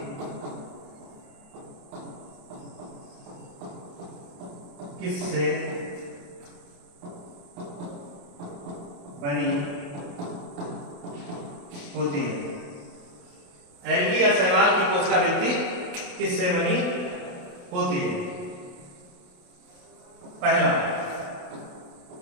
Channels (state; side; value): late; left; 28 ms